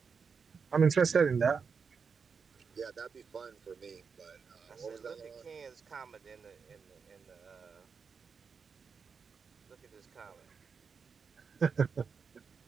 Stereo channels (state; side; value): quieter; left; 5.7 dB